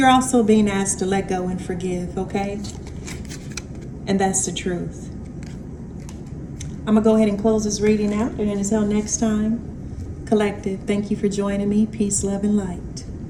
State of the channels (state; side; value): identical; both; correlation 1.00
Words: also being asked to let go and forgive, okay? And that's the truth. I'm going to go ahead and close this reading out. And until next time, Collective, thank you for joining me. Peace, love, and light.